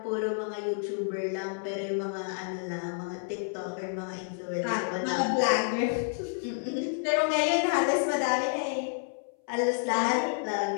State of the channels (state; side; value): silent; right; 58 dB below the other